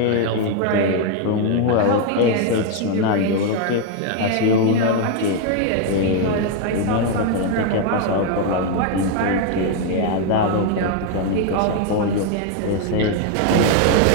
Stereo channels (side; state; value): both; different; correlation 0.01